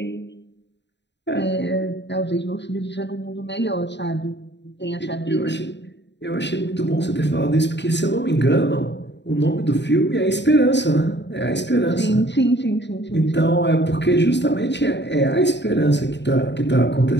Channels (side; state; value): right; late; 0.51 ms